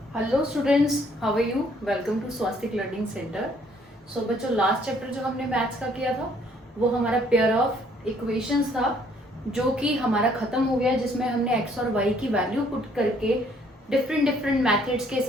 Hello students, how are you? Welcome to Swastik learning centre. So बच्चों, लास्ट चैप्टर जो हमने मैथ्स का किया था वो हमारा पेयर ऑफ इक्वेशंस था, जो कि हमारा खत्म हो गया, जिसमें हमने एक्स और वाई की वैल्यू पुट करके डिफरेंट डिफरेंट मैथड्स के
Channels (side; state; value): both; normal; correlation 0.63